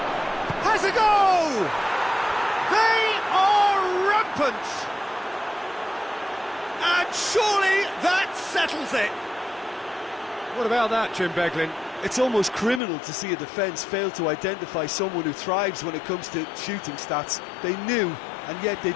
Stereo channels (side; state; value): right; drops out; at 12.8 s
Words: Has a go! They are rampant! And surely that settles it! What about that, Jim Beglin? It's almost criminal to see a defence fail to identify someone who thrives when it comes to shooting stats. They knew, and yet they